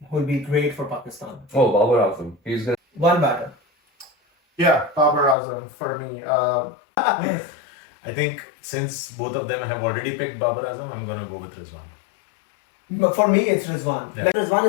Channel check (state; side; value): drops out; right; at 5.4 s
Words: will be great for Pakistan. Oh, Babar Azam. He's gonna. One batter. Yeah, Babar Azam for me. I think since both of them have already picked Babar Azam, I'm gonna go with Rizwan. But for me, it's Rizwan. Yeah. Like Rizwan